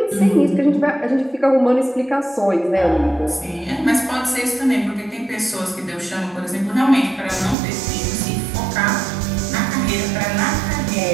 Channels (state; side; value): drops out; left; at 7.6 s